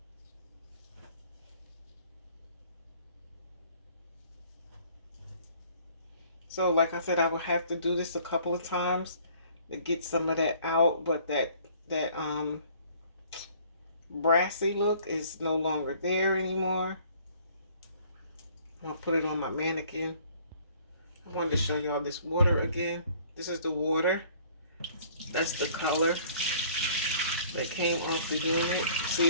So like I said, I will have to do this a couple of times to get some of that out, but that brassy look is no longer there anymore. I'll put it on my mannequin. I wanted to show y'all this water again. This is the water. That's the color. that came off the unit. See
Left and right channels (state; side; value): inverted; both; correlation -0.56